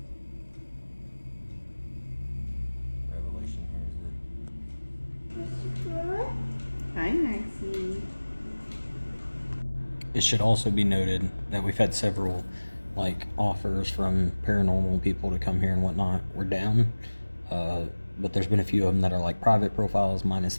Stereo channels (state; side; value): inverted; both; correlation -1.00